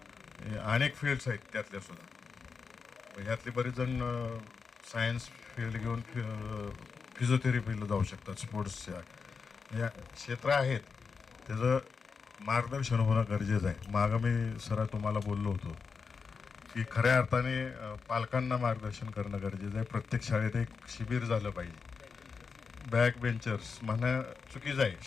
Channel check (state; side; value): quieter; right; 5.3 dB